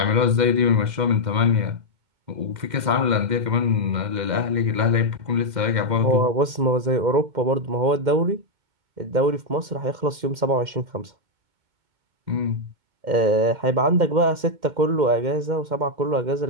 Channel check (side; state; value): left; late; 2.1 ms